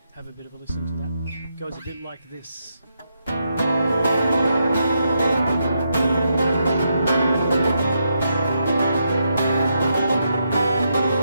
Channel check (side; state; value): both; inverted; correlation -0.81